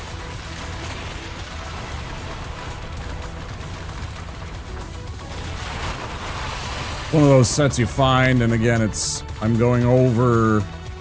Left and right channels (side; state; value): both; identical; correlation 1.00